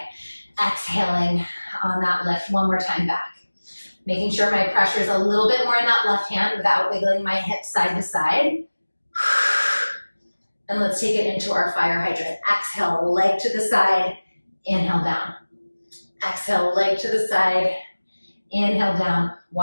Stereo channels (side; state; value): both; inverted; correlation -1.00